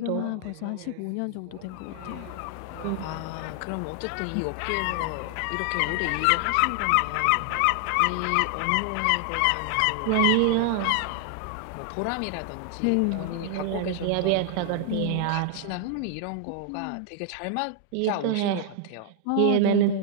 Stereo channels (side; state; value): both; different; correlation 0.00